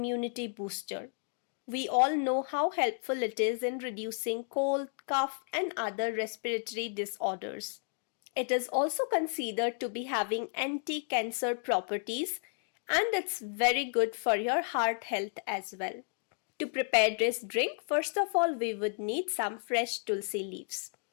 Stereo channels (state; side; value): silent; right; 56 dB below the other